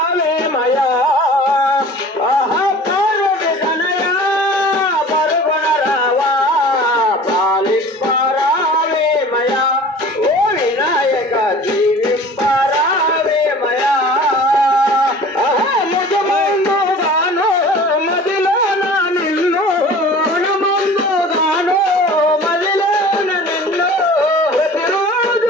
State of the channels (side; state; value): both; normal; correlation 0.43